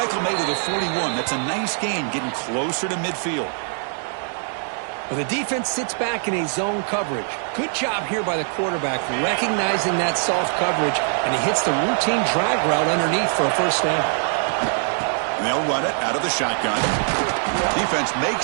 made at the 41. That's a nice gain, getting closer to midfield. Well, the defense sits back in a zone coverage. Good job here by the quarterback recognizing that soft coverage, and he hits the routine drag route underneath for a first down. And they'll run it out of the shotgun. Defense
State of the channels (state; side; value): silent; left; 64 dB below the other